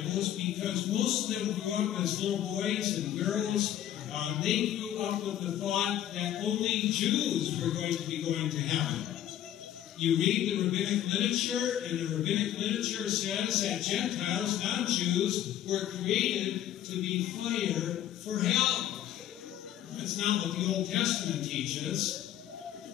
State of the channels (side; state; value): right; quieter; 11.8 dB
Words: because most of them grew up as little boys and girls. They grew up with the thought that only Jews were going to be going to heaven. You read the rabbinic literature, and the rabbinic literature says that Gentiles, non-Jews, were created to be fire for hell. That's not what the Old Testament teaches.